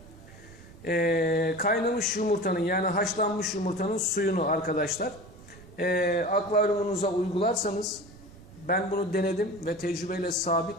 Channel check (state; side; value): noise; right; rumble, 22 dB below the sound